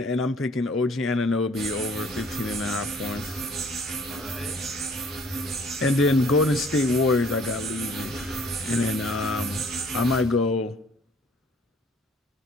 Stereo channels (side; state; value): both; normal; correlation 0.56